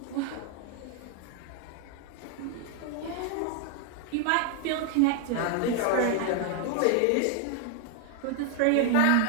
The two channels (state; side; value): different; both; correlation 0.00